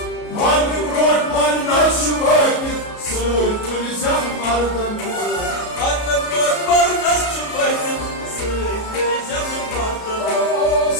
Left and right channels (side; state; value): right; late; 33 ms